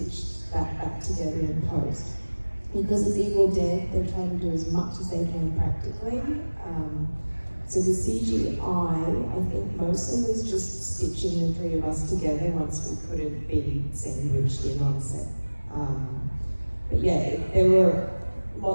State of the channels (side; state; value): both; inverted; correlation -1.00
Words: that back together in post. Because it's Evil Dead, they're trying to do as much as they can practically. So the CGI, I think mostly was just stitching the 3 of us together once we couldn't be sandwiched in on set. But yeah, there were